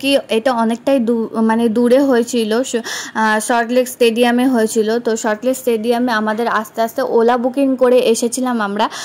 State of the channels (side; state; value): both; identical; correlation 1.00